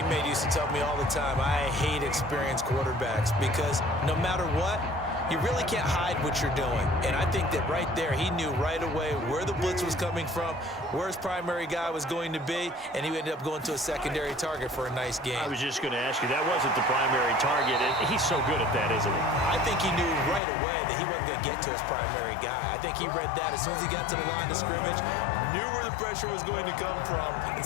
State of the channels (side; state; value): right; drops out; at 20.4 s